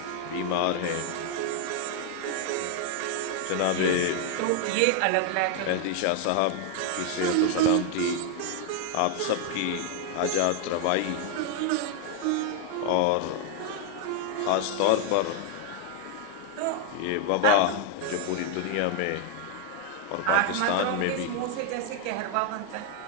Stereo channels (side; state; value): both; different; correlation 0.00